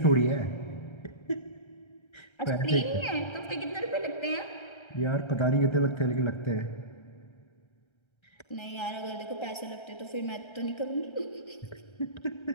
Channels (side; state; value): right; late; 1.3 ms